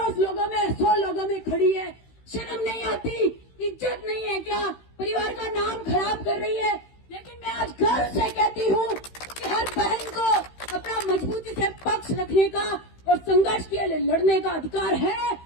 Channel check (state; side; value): late; right; 16 ms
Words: लोगों में, 100 लोगों में खड़ी है, शर्म नहीं आती, इज्जत नहीं है क्या, परिवार का नाम खराब कर रही है। लेकिन मैं आज गर्व से कहती हूँ कि हर बहन को अपना मजबूती से पक्ष रखने का और संघर्ष के लिए लड़ने का अधिकार है।